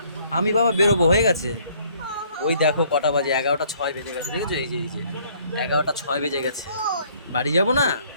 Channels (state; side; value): inverted; both; correlation -0.61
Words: আমি বাবা বেরোবো, হয়ে গেছে। ওই দেখো কটা বাজে, 11:06 বেজে গেছে, দেখেছো? এই যে 11:06 বেজে গেছে, বাড়ি যাবো না?